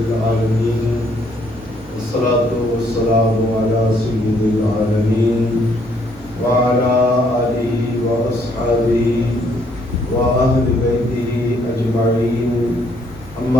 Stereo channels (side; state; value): right; noise; hum, 21 dB below the sound